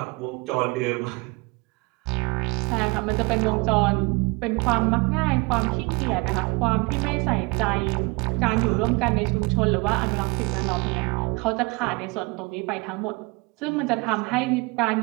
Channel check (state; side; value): quieter; left; 27.4 dB